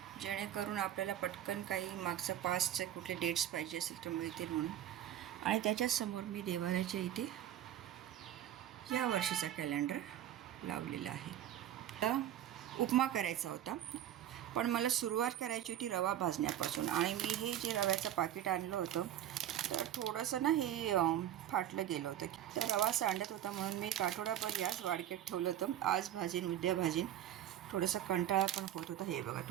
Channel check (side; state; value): left; quieter; 11.6 dB